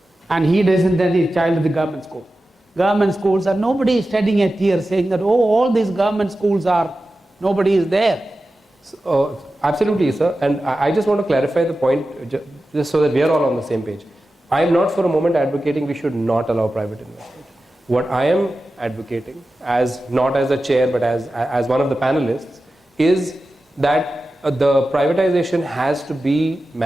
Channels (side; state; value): both; normal; correlation 0.93